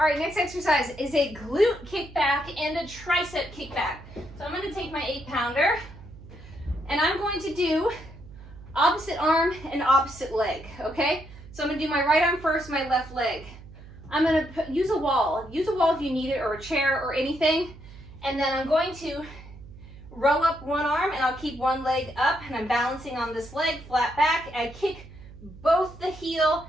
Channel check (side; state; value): right; noise; hum, 18 dB below the sound